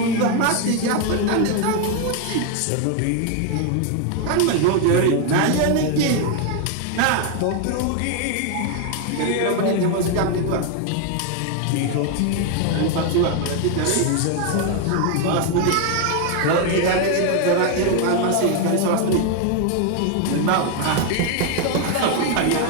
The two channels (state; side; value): different; both; correlation 0.01